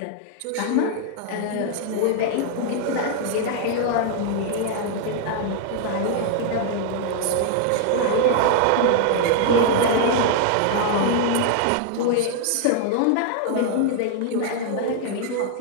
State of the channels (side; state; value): both; different; correlation 0.00